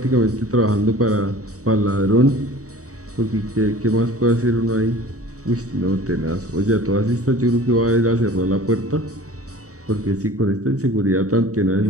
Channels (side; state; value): left; late; 0.66 ms